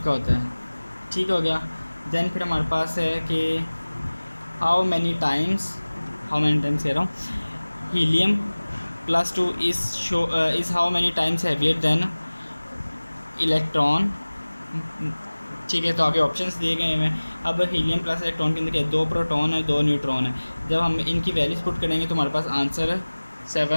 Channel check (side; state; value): both; inverted; correlation -1.00